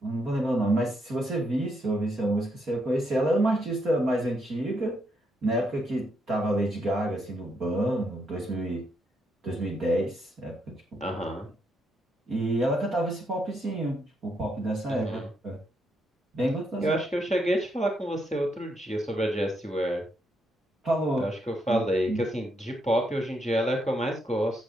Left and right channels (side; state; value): both; normal; correlation 0.78